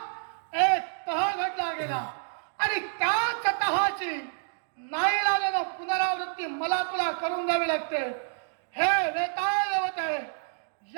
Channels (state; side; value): silent; left; digital silence